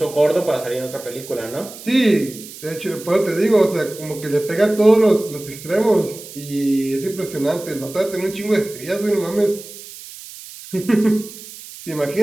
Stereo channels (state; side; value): noise; right; hiss, 15 dB below the sound